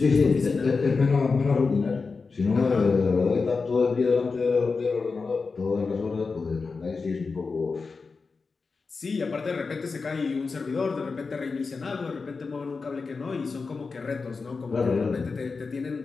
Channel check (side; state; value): right; quieter; 4.5 dB